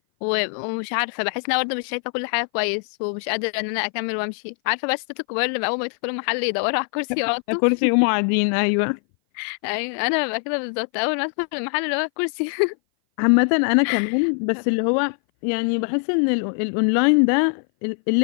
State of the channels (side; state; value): right; silent; 58 dB below the other